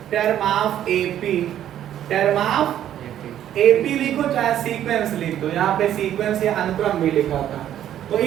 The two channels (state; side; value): quieter; left; 11.1 dB